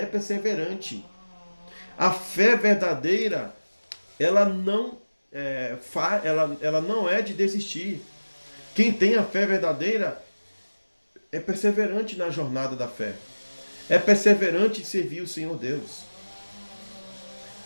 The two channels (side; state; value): both; inverted; correlation -1.00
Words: perseverante. A fé verdadeira, ela não ela não é de desistir. Quem tem a fé verdadeira é perseverante na jornada da fé. É perseverante em servir o Senhor Deus.